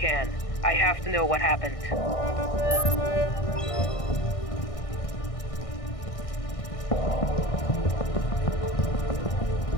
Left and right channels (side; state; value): right; late; 1.6 ms